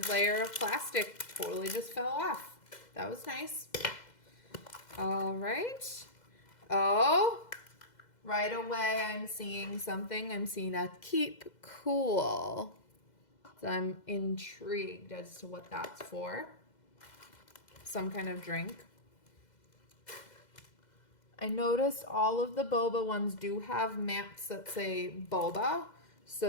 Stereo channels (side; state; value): right; late; 2.0 ms